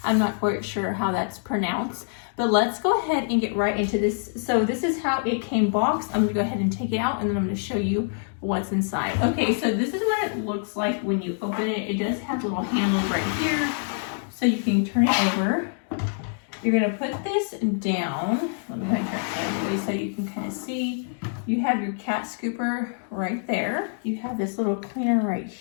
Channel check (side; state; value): right; silent; digital silence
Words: I'm not quite sure how that's pronounced, but let's go ahead and get right into this. So this is how it came boxed. I'm gonna go ahead and take it out and then I'm gonna show you what's inside. Okay, so this is what it looks like when you open it. It does have little handles right here, so you can turn it over. You're gonna put this down. Let me turn it sideways so you can kind of see. You have your cat scooper right there. You have this little cleaner right